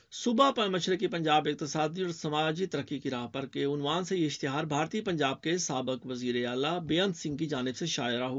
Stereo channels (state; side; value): identical; both; correlation 1.00